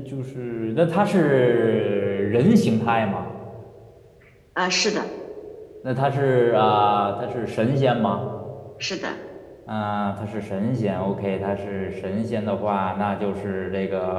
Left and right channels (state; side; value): identical; both; correlation 1.00